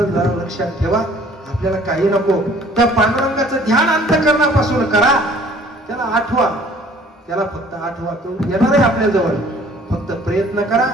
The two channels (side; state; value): both; normal; correlation 0.54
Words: लक्षात ठेवा. आपल्याला काही नको, त्या पांडुरंगाचं ध्यान अंतःकरणापासून करा. त्याला आठवा, त्याला फक्त आठवा. तो येणार आहे आपल्या जवळ, फक्त प्रयत्न करा.